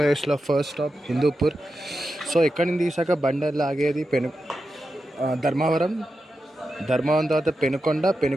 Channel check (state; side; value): normal; both; correlation 0.90